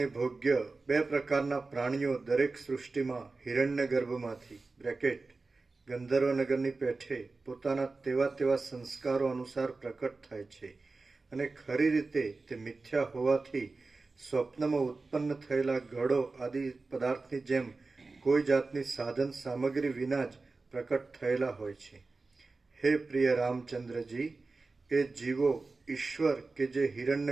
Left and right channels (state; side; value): quieter; left; 3.7 dB